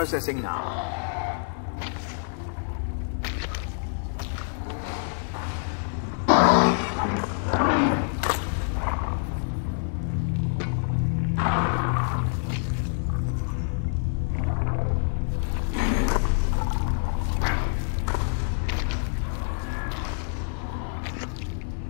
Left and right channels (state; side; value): silent; right; 60 dB below the other